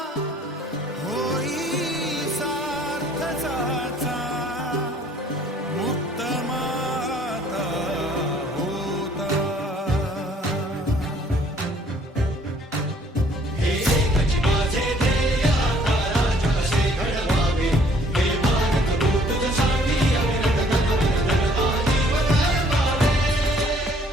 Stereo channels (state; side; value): normal; both; correlation 0.60